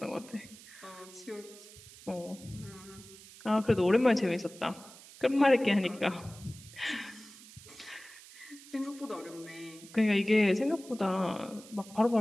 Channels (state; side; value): noise; right; hiss, 19 dB below the sound